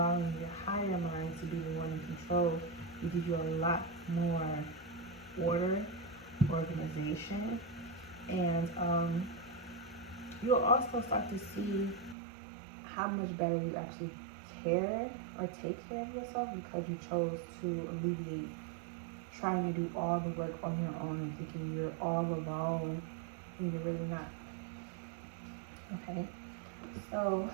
your higher mind to be the one in control will give you a lot more order, organization, and you'll also start to see how much better you actually care or take care of yourself because you chose to alleviate trying to do all the work on your own and thinking you're all alone when you're really not. Okay, so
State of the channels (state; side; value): drops out; left; at 12.2 s